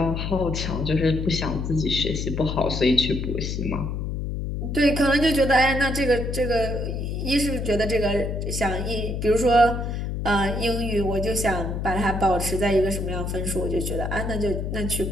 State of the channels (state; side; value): noise; left; hum, 3 dB below the sound